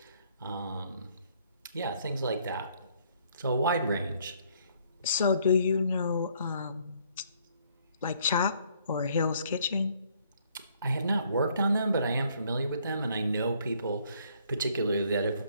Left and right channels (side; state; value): both; inverted; correlation -0.65